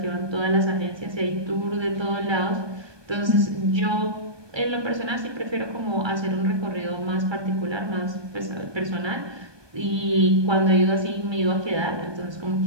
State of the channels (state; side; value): late; left; 1.2 ms